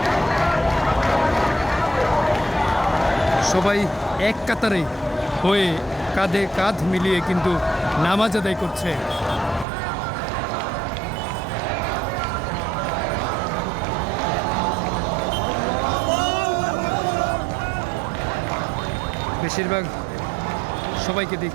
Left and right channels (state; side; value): drops out; left; at 9.7 s